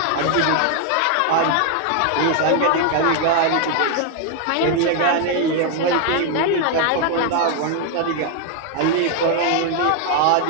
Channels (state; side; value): different; both; correlation 0.00